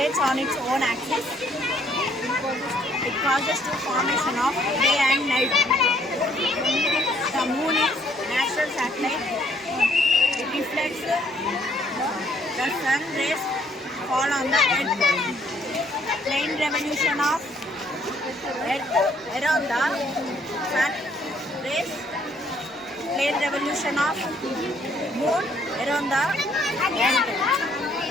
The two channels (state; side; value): normal; both; correlation 0.65